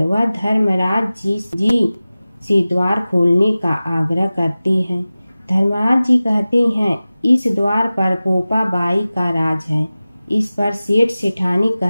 वह धर्मराज जी से द्वार खोलने का आग्रह करते हैं। धर्मराज जी कहते हैं, इस द्वार पर पोपा बाई का राज है। इस पर सेठ सेठानी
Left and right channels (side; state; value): both; inverted; correlation -0.96